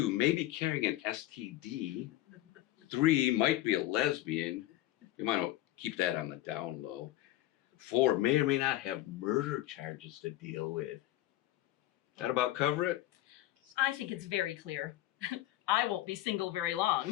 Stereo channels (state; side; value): quieter; right; 15.3 dB